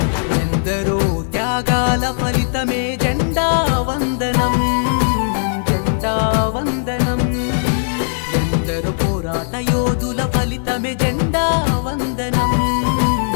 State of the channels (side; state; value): right; silent; 56 dB below the other